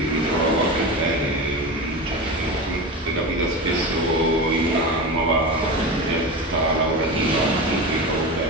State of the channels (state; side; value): normal; both; correlation 0.24